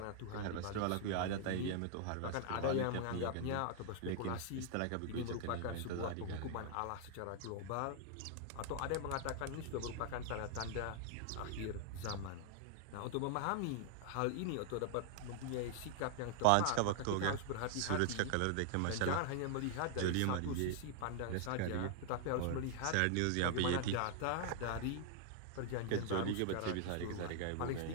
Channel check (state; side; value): different; both; correlation -0.01